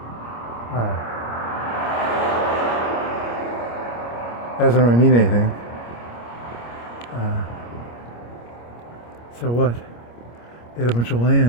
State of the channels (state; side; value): late; right; 25 ms